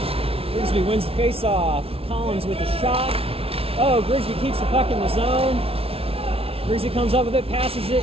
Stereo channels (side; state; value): left; late; 0.27 ms